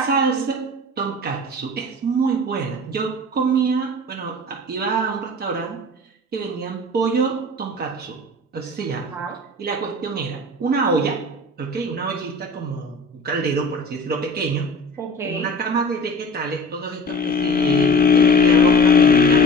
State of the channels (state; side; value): normal; both; correlation 0.40